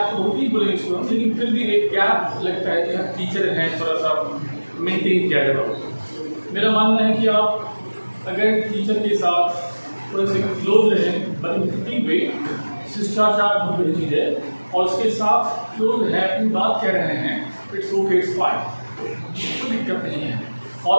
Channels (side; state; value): both; inverted; correlation -1.00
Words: तो होती ही बोलेंगे इसको, लेकिन फिर भी एक गैप लगता है कि हम टीचर हैं, थोड़ा सा मेंटेन किया जाएगा। मेरा मानना है कि आप अगर टीचर के साथ थोड़े से क्लोज रहें, बड़ी वे शिष्टाचार बहुत बड़ी चीज़ है, और उसके साथ क्लोज है, अपनी बात कह रहे हैं, इट्स ओके, इट्स फाइन, कोई दिक्कत नहीं है।